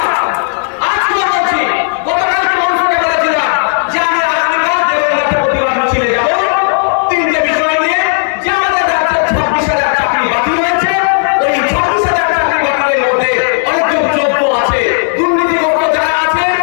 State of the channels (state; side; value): silent; right; digital silence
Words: তিনটে বিষয় নিয়ে যে আমাদের 26,000 চাকরি